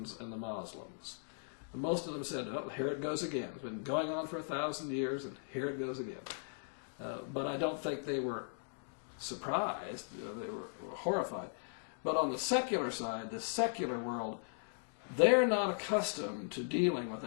and the Muslims. And most of them said, oh, here it goes again. It's been going on for 1,000 years, and here it goes again. But I don't think they were surprised. They were horrified. But on the secular side, the secular world, they're not accustomed to dealing with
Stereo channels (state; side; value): silent; right; digital silence